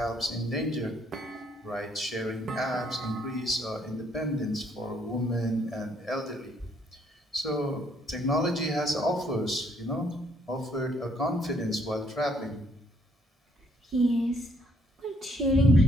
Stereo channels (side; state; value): both; normal; correlation 0.67